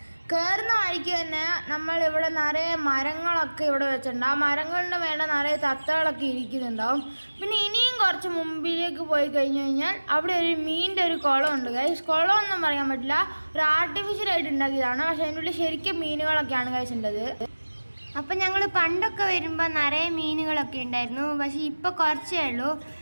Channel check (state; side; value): inverted; both; correlation -1.00